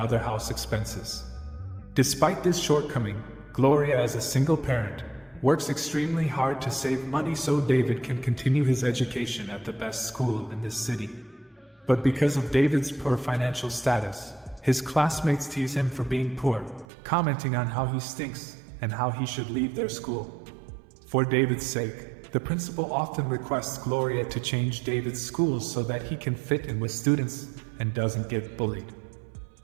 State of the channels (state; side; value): drops out; left; at 16.9 s